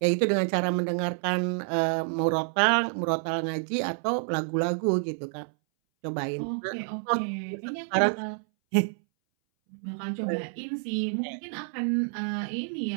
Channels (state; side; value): silent; left; 59 dB below the other